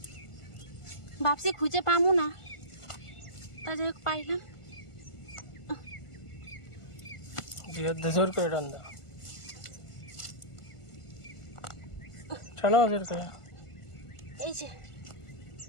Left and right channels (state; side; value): late; right; 1.4 ms